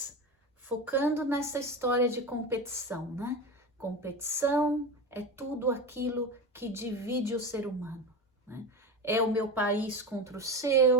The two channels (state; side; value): normal; both; correlation 0.23